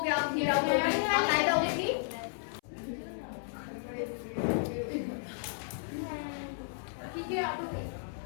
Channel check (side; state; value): right; silent; 56 dB below the other